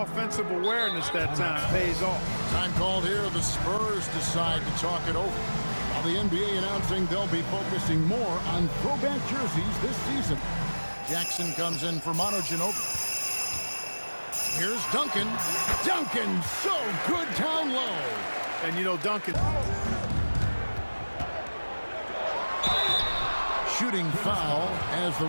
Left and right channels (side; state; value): both; inverted; correlation -1.00